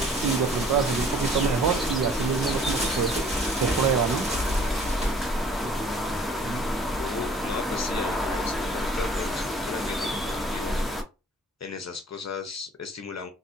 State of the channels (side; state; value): both; normal; correlation 0.53